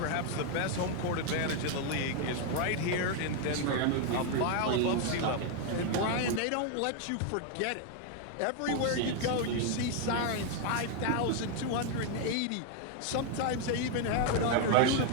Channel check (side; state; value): both; different; correlation 0.01